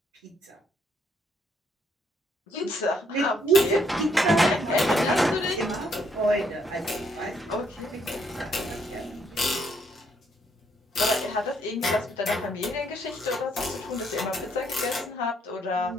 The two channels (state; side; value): normal; both; correlation 0.71